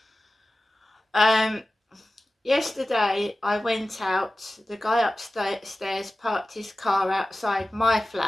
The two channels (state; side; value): normal; both; correlation 0.95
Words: Yesterday I went out. The guy upstairs parked his car outside my